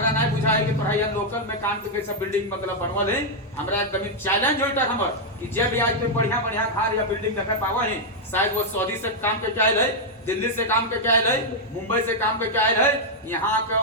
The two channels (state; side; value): normal; both; correlation -0.03